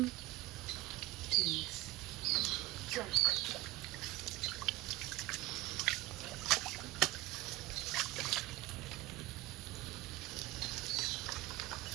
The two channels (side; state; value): left; quieter; 19.3 dB